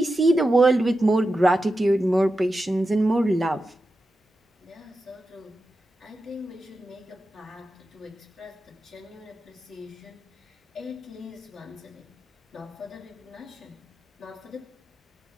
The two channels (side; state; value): both; normal; correlation 0.91